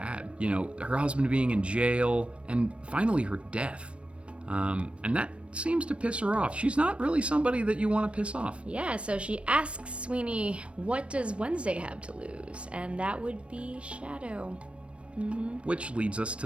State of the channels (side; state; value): left; late; 0.060 ms